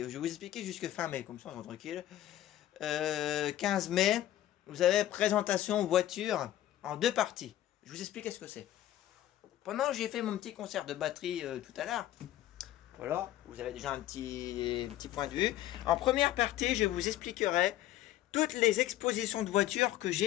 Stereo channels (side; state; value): right; quieter; 13.4 dB